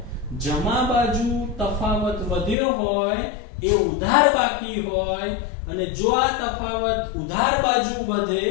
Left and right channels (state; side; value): drops out; right; at 2.6 s